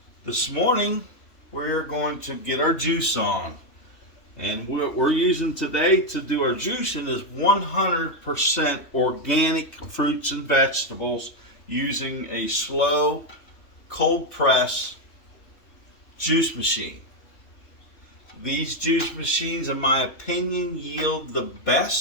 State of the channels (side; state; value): right; late; 3.1 ms